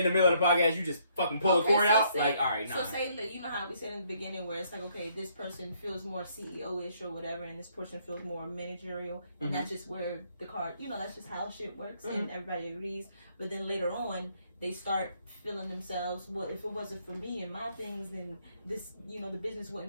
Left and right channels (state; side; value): inverted; both; correlation -0.69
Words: the middle of the podcast you just fucking pull a cord so out, say- like all right, nah. So say that you know how we said in the beginning where it's like, okay, this person feels more CEO-ish or whatever, and this person feels more managerial, and Mhm. that's just where the card, that's just how shit works, Mm-hmm. and everybody agrees. But then later on, they start feeling themselves, well, if it wasn't for me and my things, then this, the business